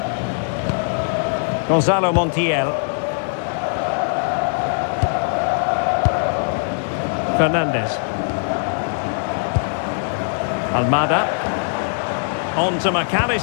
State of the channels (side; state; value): right; silent; digital silence